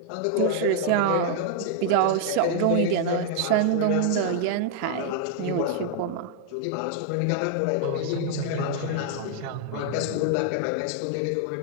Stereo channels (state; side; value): different; both; correlation 0.00